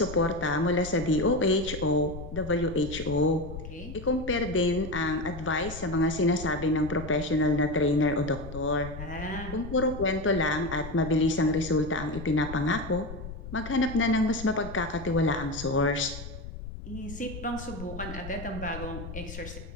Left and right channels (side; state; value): left; noise; rumble, 11 dB below the sound